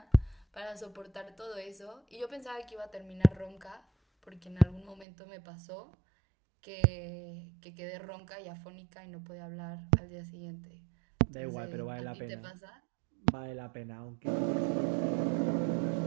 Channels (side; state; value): left; drops out; at 5.1 s